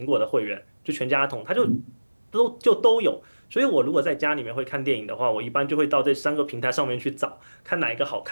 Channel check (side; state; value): both; inverted; correlation -1.00